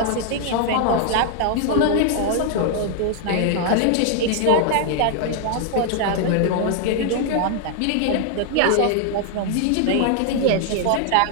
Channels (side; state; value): both; different; correlation 0.00